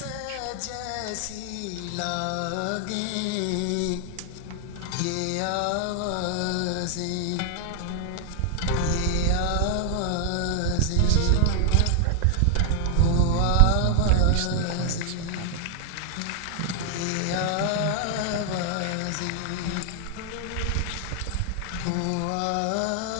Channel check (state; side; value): different; both; correlation 0.00